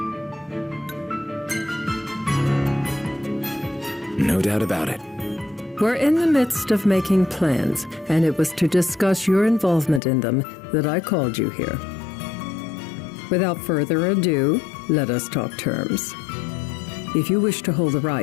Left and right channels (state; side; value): drops out; right; at 10.0 s